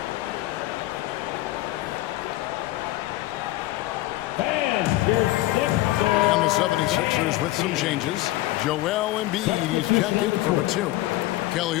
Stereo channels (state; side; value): quieter; right; 17.2 dB